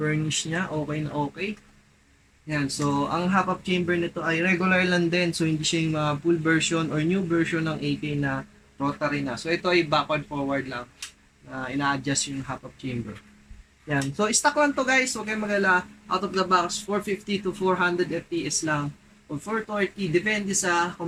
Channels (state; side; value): identical; both; correlation 1.00